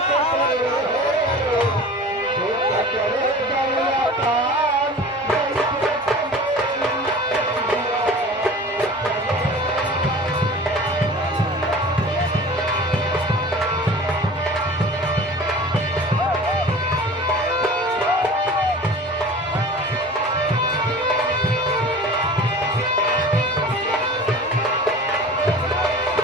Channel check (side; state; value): both; normal; correlation 0.40